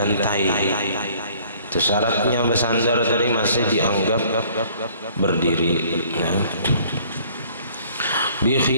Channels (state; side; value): inverted; both; correlation -0.56